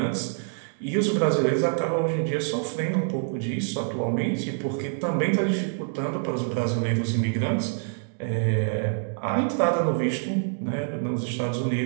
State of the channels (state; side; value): silent; left; digital silence